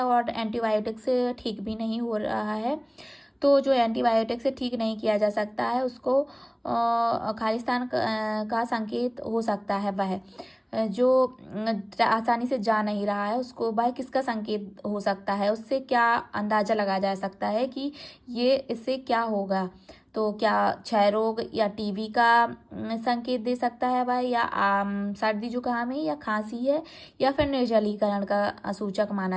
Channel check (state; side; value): identical; both; correlation 1.00